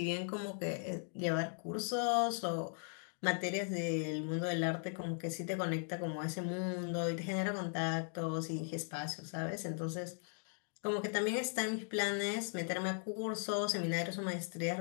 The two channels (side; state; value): right; silent; 52 dB below the other